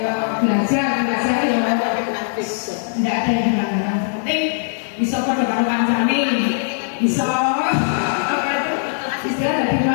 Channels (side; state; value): right; silent; digital silence